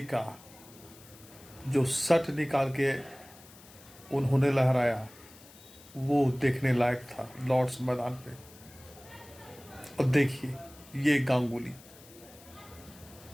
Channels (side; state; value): left; noise; hiss, 22 dB below the sound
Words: का जो शट निकाल के उन्होंने लहराया वो देखने लायक था लॉर्ड्स मैदान पे। और देखिए ये गांगुली